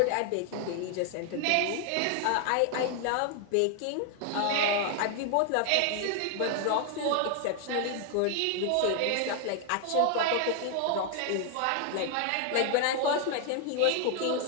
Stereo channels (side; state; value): both; different; correlation 0.00